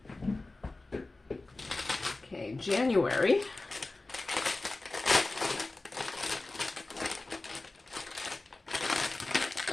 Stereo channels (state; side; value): quieter; right; 3.2 dB